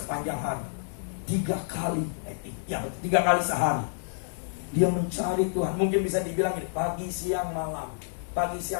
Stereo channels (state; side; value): silent; right; 58 dB below the other